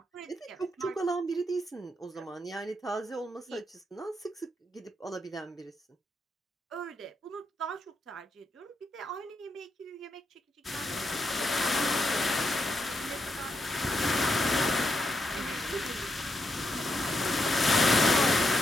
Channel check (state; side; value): normal; both; correlation 0.81